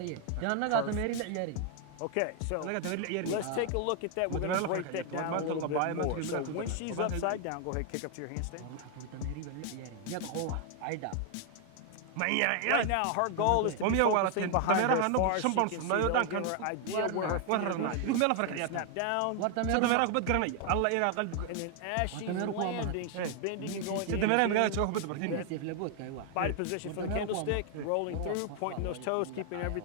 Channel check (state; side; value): different; both; correlation 0.00